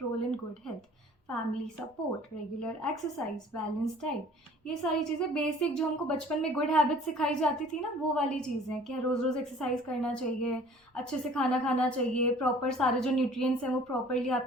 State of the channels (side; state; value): both; normal; correlation 0.50